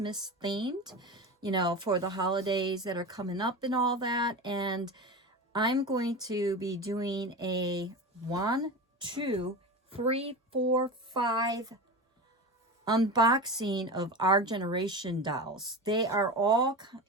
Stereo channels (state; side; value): normal; both; correlation 0.26